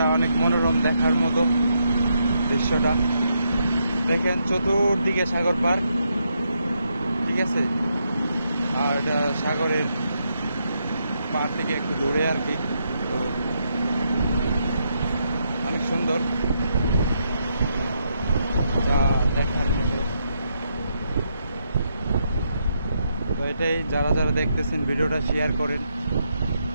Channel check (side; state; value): both; inverted; correlation -0.79